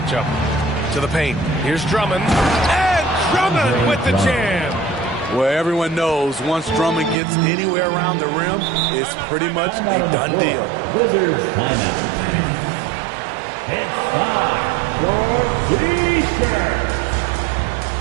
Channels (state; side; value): drops out; left; at 7.2 s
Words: To the paint. Here's Drummond. And Drummond with the jam. Where everyone knows once Drummond gets anywhere around the rim, it's pretty much a done deal. Wizards timeout. It's time for T-shirts.